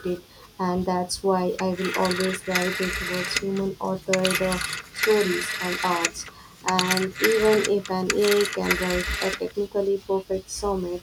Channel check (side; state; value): both; identical; correlation 1.00